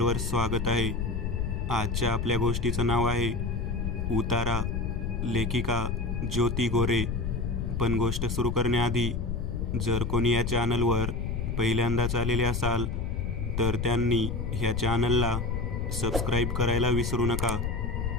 स्वागत आहे. आजच्या आपल्या गोष्टीचं नाव आहे उतारा, लेखिका ज्योती गोरे. पण गोष्ट सुरू करण्याआधी जर कोणी या चॅनलवर पहिल्यांदाच आलेले असाल तर त्यांनी ह्या चॅनलला सबस्क्राईब करायला विसरू नका.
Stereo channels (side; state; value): left; noise; rumble, 1 dB below the sound